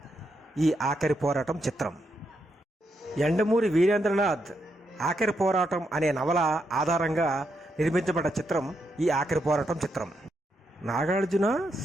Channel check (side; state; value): both; normal; correlation 0.81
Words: ఈ ఆఖరి పోరాటం చిత్రం. యండమూరి వీరేంద్రనాథ్ ఆఖరి పోరాటం అనే నవల ఆధారంగా నిర్మించబడ్డ చిత్రం ఈ ఆఖరి పోరాటం చిత్రం. నాగార్జున